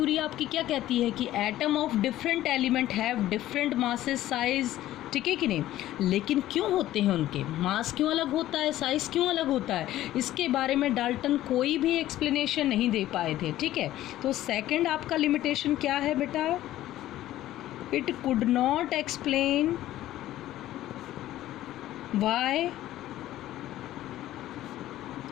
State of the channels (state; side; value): quieter; right; 14.2 dB